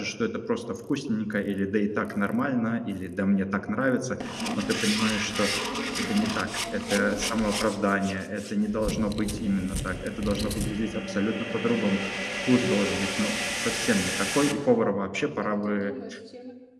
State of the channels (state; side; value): identical; both; correlation 1.00